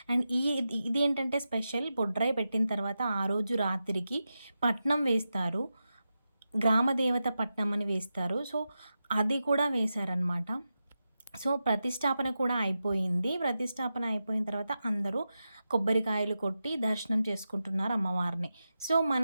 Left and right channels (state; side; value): inverted; both; correlation -0.91